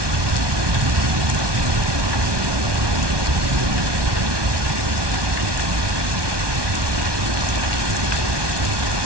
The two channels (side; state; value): left; late; 1.2 ms